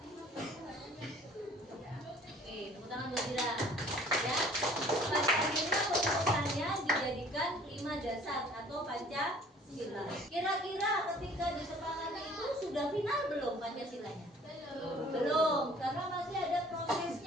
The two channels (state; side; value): normal; both; correlation 0.53